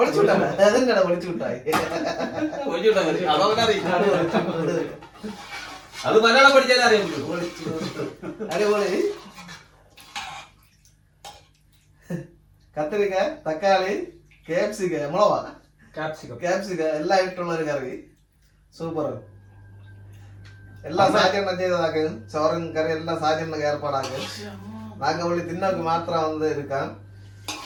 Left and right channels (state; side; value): identical; both; correlation 1.00